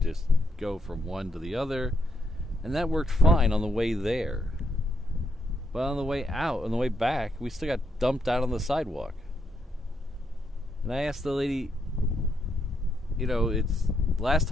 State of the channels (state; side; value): normal; both; correlation 0.77